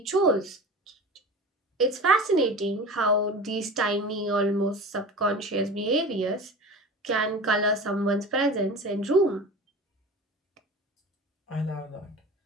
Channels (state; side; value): normal; both; correlation 0.35